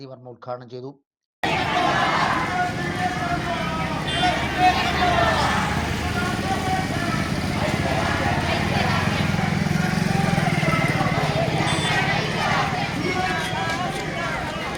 വർമ്മ ഉദ്ഘാടനം ചെയ്തു.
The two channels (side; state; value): both; identical; correlation 1.00